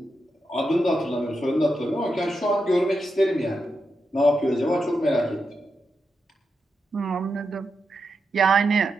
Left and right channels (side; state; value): both; normal; correlation 0.86